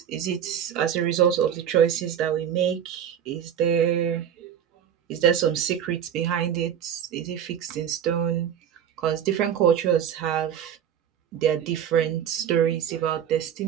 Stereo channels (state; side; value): quieter; left; 9.1 dB